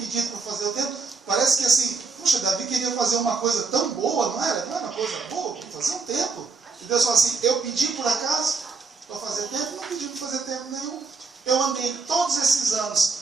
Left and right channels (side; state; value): left; quieter; 4.6 dB